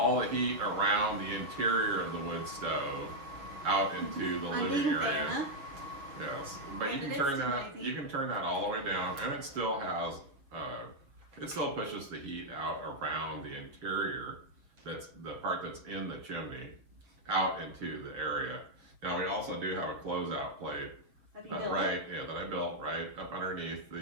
the heat around the interior of the wood stove out into the living area. Yes, but you can turn that all the way down, and it still has it still pushes the heat out around the interior. That's the part that's in the chimney out into the area. Now we also do have a closeout plate that I built right up underneath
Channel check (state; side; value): late; left; 7.3 ms